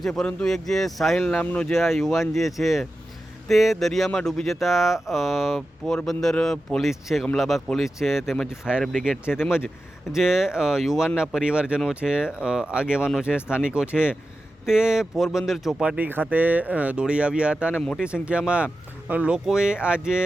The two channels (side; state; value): both; normal; correlation 0.92